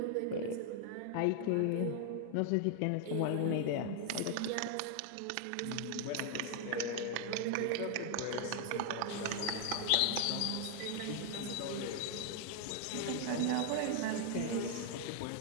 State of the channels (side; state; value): both; different; correlation 0.00